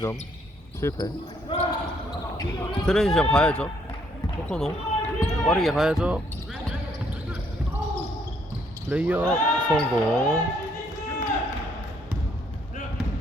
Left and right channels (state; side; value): normal; both; correlation 0.68